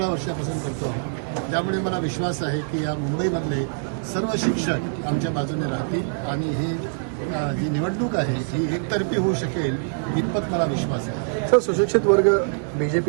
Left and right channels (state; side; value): silent; left; digital silence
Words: वर्षापासून करतो आहोत. त्यामुळे मला विश्वास आहे की या मुंबईमधले सर्व शिक्षक आमच्या बाजूने राहतील आणि जी निवडणूक आहे ही एकतर्फी होऊ शकेल इतपत मला विश्वास आहे. सर, सुशिक्षित वर्ग